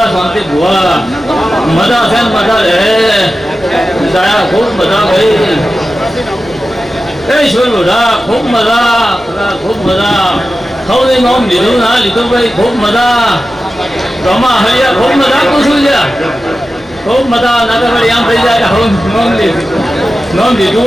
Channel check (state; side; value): noise; right; hum, 27 dB below the sound